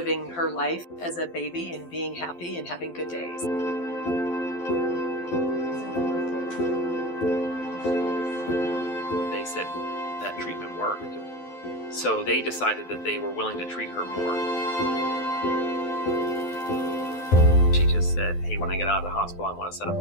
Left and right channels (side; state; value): right; late; 12 ms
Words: her life as a baby and being happy and having good days. They said that treatment worked. So they decided that they were willing to treat her more. She just said, hey, when I get out of the hospital, I want to set up a